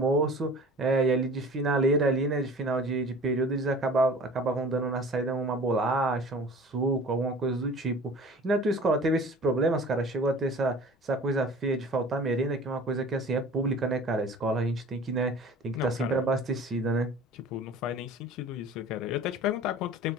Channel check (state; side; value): normal; both; correlation 0.43